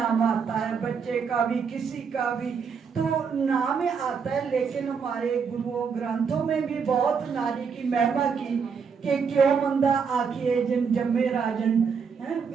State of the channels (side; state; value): left; quieter; 6.1 dB